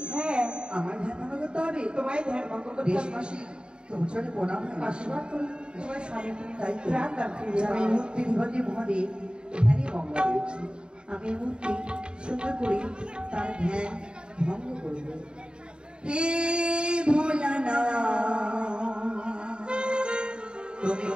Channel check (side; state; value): left; late; 0.051 ms